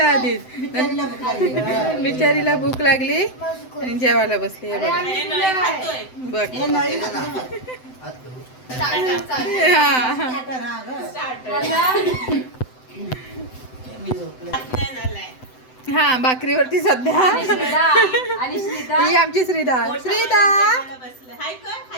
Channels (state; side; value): late; right; 7.9 ms